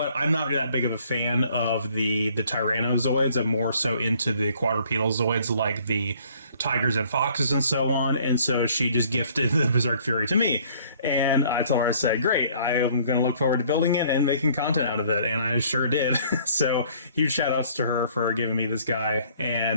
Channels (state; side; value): inverted; both; correlation -0.58